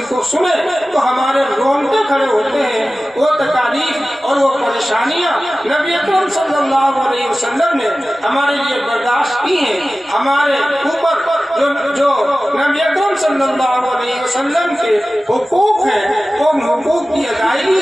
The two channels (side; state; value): both; normal; correlation 0.96